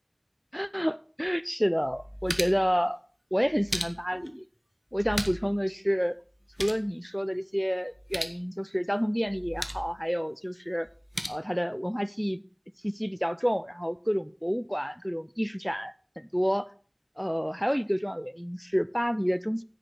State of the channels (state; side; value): identical; both; correlation 1.00